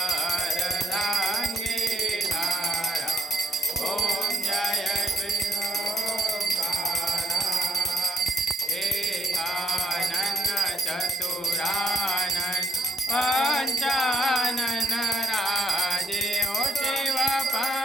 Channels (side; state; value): both; normal; correlation 0.69